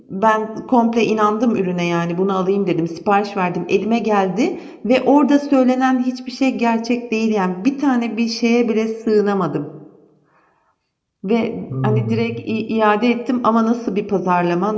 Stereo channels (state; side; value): identical; both; correlation 1.00